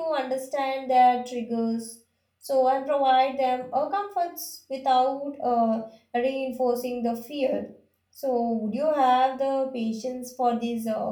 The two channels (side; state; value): both; identical; correlation 1.00